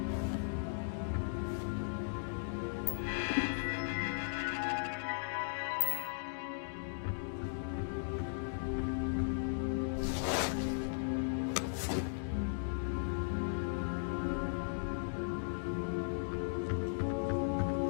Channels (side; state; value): right; silent; digital silence